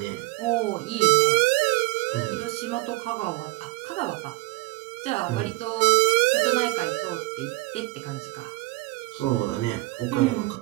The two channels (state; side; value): quieter; left; 23.1 dB